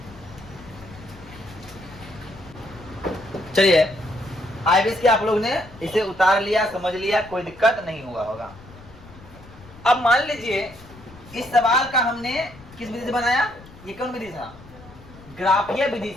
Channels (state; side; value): noise; left; rumble, 20 dB below the sound